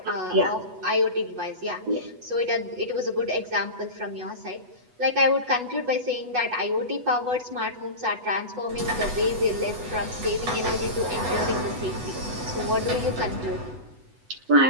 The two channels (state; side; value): late; left; 8.1 ms